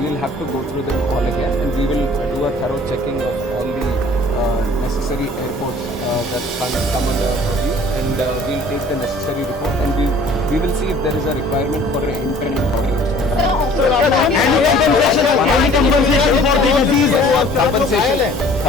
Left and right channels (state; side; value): normal; both; correlation 0.51